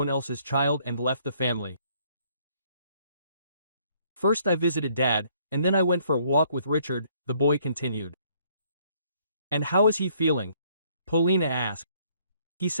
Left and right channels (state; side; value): inverted; both; correlation -0.65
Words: else's child and left the family. "First I visited Dad, and then I went for a walk with Richard," the boy continued. "And how is he feeling?" Polina asked. "He